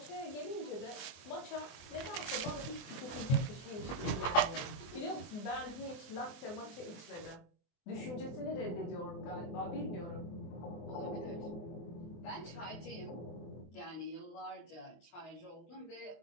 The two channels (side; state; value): right; late; 23 ms